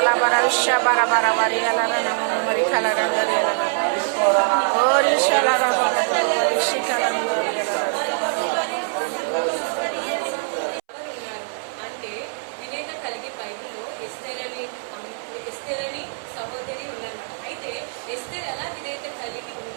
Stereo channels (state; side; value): silent; left; 63 dB below the other